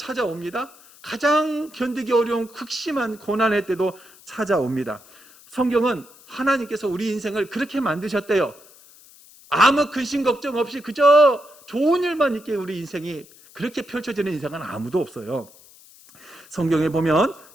가장 견디기 어려운 극심한 고난의 때도 찾아옵니다. 성경은 하나님께서 우리 인생을 그렇게 만드셨대요. 아무 근심 걱정 없이 그저 좋은 일만 있게 우리 인생이 그렇게 펼쳐지는 인생은 아무도 없어요. 성경에 보면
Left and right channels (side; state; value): left; noise; hiss, 24 dB below the sound